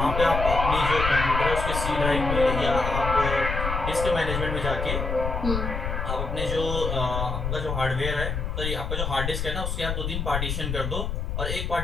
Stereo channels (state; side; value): noise; left; rumble, 2 dB below the sound